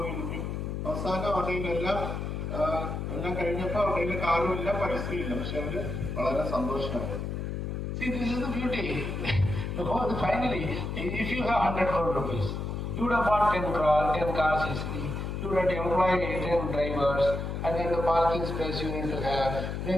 അവസാനം അവരുടെ എല്ലാം കഴിഞ്ഞപ്പോൾ അവരുടെ കാറുമില്ല, പൈസയില്ല. പക്ഷെ അവര് വളരെ സന്തോഷമാണ്. See, this is the beauty. Because finally, if you have 100 crore rupees, you would have bought 10 cars easily. You would have employed 10 drivers, and then the parking space you need to have.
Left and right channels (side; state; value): left; noise; hum, 4 dB below the sound